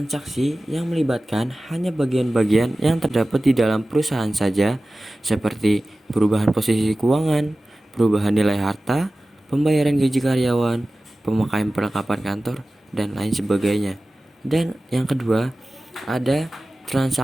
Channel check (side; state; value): both; normal; correlation 0.96